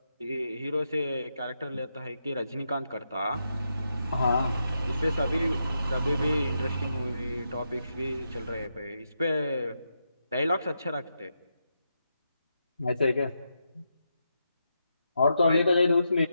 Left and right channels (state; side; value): inverted; both; correlation -0.84